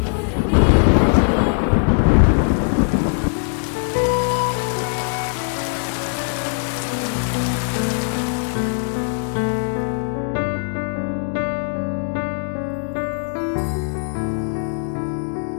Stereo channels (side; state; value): right; silent; 62 dB below the other